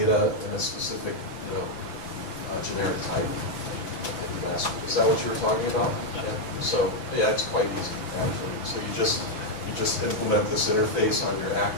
in a specific, generic type. Is that what you were talking about? Yeah. So yeah, it's quite easy actually. So you just implement this interface on your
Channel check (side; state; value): right; late; 5.8 ms